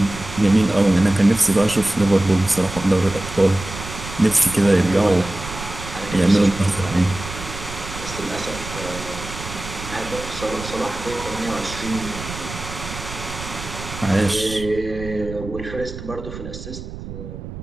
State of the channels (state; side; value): noise; right; rumble, 11 dB below the sound